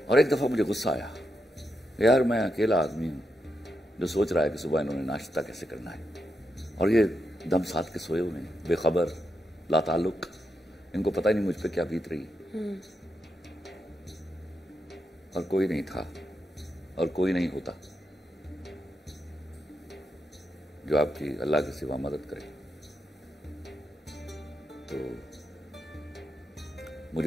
اور ایک دفعہ مجھے غصہ آیا، یار میں اکیلا آدمی ہوں جو سوچ رہا ہے کہ صبح انہوں نے ناشتہ کیسے کرنا ہے، اور یہ دم ساتھ کے سوئے ہوئے ہیں، بے خبر، لا تعلق. ان کو پتہ ہی نہیں مجھ پہ کیا بیت رہی. اور کوئی نہیں تھا اور کوئی نہیں ہوتا جو آپ کی اللہ کے سوا مدد کرے. تو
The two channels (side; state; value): both; normal; correlation 0.84